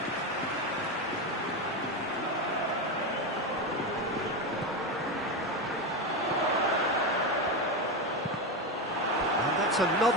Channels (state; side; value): normal; both; correlation 0.15